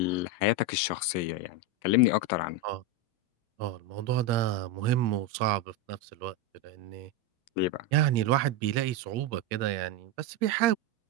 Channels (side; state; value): both; normal; correlation 0.10